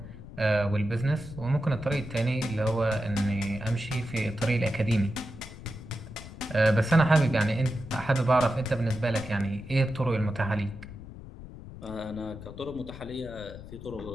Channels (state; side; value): noise; left; rumble, 14 dB below the sound